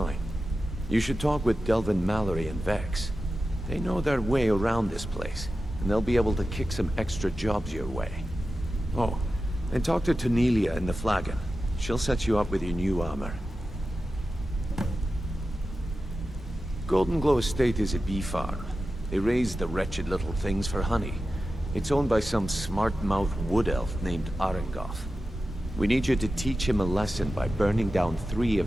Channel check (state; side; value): normal; both; correlation 0.93